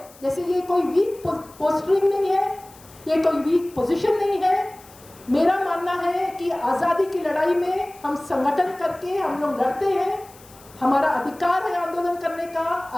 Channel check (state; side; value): noise; left; hiss, 24 dB below the sound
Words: जैसे ये कोई वीक पोस्टरिंग नहीं है, ये कोई वीक पोजीशन नहीं है। मेरा मानना है कि आज़ादी की लड़ाई में हम संगठन करके हम लोग लड़ते हैं, हमारा अधिकार है आंदोलन करने का,